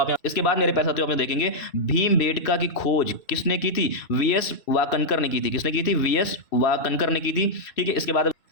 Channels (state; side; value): late; right; 2.6 ms